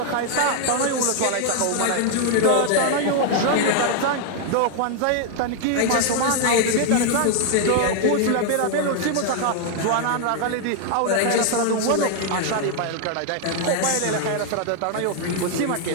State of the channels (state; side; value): different; both; correlation 0.00